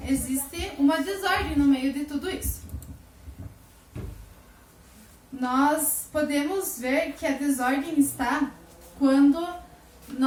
existe uma desordem no meio de tudo isso. Nós podemos ver que a desordem está quando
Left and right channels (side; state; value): both; identical; correlation 1.00